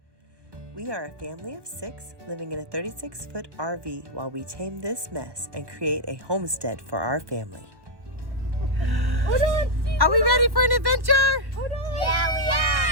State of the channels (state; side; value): late; left; 1.2 ms